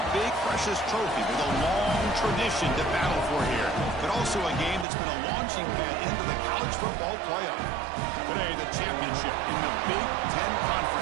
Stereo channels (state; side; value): drops out; left; at 4.9 s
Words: big, precious trophy with a long tradition to battle for here, but also a game that's been a launching pad into the college football playoff. Today, the championship in the Big Ten